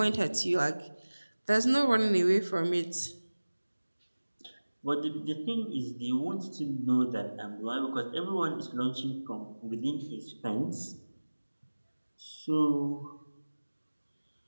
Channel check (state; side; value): inverted; both; correlation -1.00